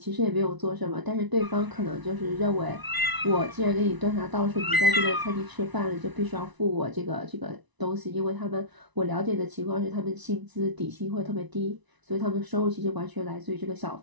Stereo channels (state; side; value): late; left; 1.0 ms